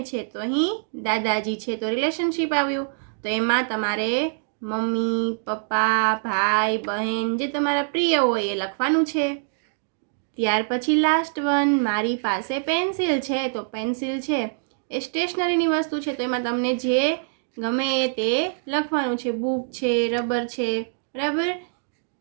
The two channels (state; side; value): silent; left; digital silence